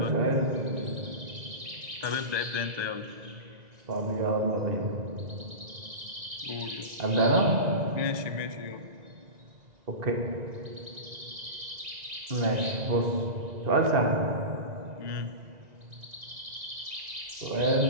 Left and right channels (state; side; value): late; left; 1.9 ms